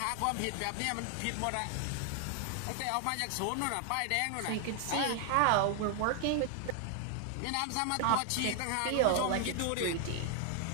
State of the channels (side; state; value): both; different; correlation 0.00